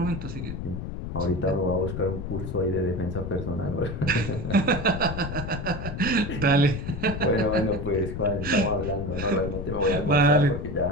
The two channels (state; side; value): noise; left; rumble, 6 dB below the sound